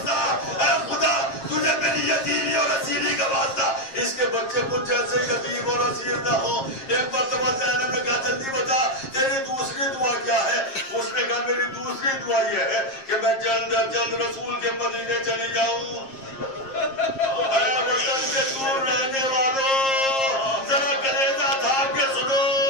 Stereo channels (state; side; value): late; right; 7.5 ms